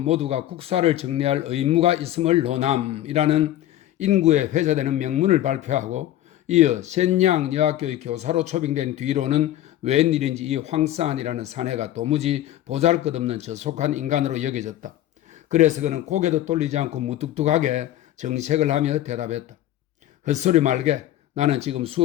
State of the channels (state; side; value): quieter; right; 13.2 dB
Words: 국사를 정리할 의무가 있음을 논함이라는 인구에 회자되는 명문을 발표하고 이어 센양 여학교의 교사로 초빙된 뒤로는 웬일인지 이 황사안이라는 사내가 도무지 보잘것없는 저속한 인간으로 여겨졌다. 그래서 그는 고개도 돌리지 않고 무뚝뚝하게 정색을 하며 대답했다. 헛소리 말게. 나는 지금